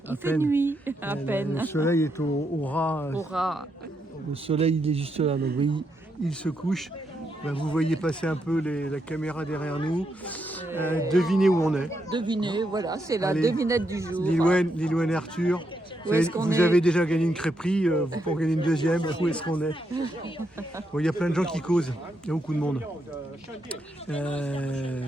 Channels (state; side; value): normal; both; correlation 0.80